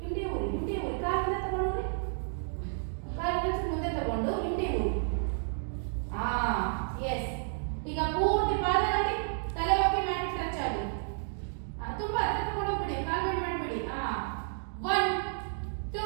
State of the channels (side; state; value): left; silent; digital silence